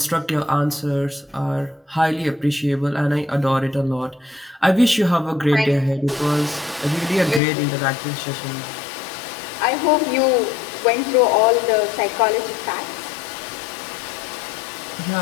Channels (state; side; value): drops out; right; at 7.4 s